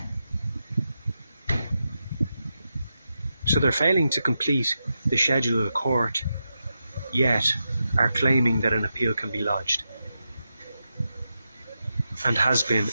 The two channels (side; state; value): both; inverted; correlation -0.87